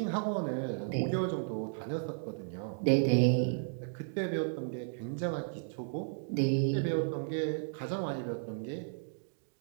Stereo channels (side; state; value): left; silent; digital silence